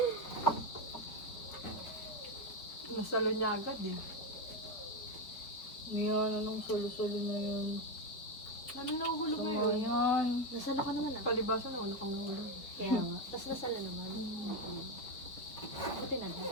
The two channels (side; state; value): right; late; 4.4 ms